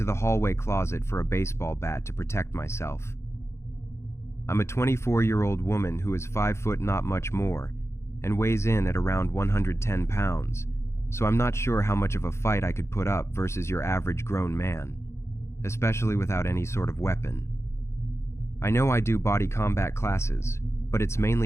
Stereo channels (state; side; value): late; right; 0.13 ms